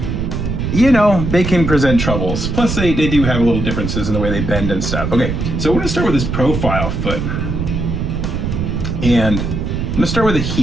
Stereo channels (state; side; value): noise; right; rumble, 2 dB below the sound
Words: you know, they can present troubles. Plus, they do have a little differences in the way they bend and stuff. Okay, so we're gonna start with this profile foot. And I'm gonna start with a